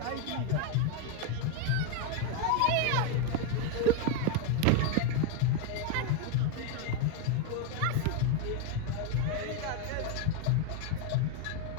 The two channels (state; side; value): different; both; correlation 0.01